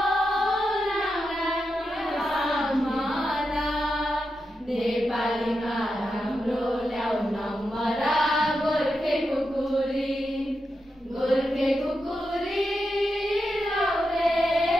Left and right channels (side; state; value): both; normal; correlation 0.87